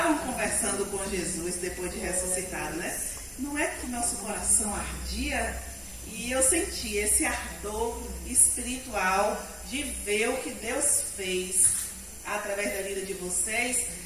conversando com Jesus depois de ressuscitado, né? Não é que nosso coração ardia? E eu senti esse ardor espiritual de ver o que Deus fez através da vida de vocês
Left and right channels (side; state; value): both; identical; correlation 1.00